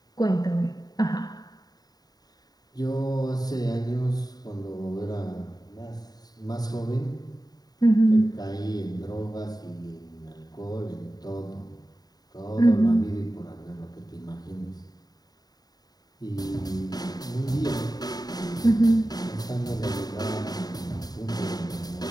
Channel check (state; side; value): late; right; 0.19 ms